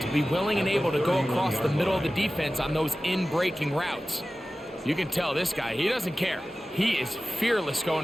to be willing and able to go across the middle of the defense on those in-breaking routes. You can tell this guy, he doesn't care. He is fearless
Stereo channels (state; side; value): normal; both; correlation 0.96